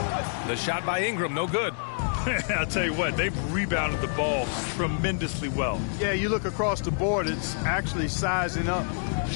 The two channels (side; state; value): right; silent; digital silence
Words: The shot by Ingram, no good. I'll tell you what, they've rebounded the ball tremendously well. Yeah, you look across the board, it's actually sizing up,